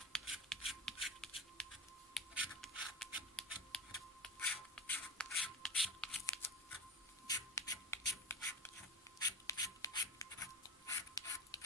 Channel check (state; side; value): normal; both; correlation 0.27